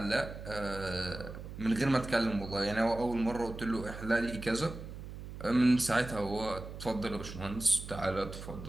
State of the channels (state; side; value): noise; right; hum, 11 dB below the sound